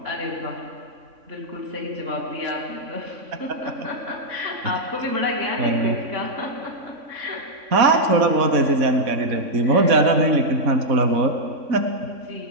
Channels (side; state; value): left; late; 3.6 ms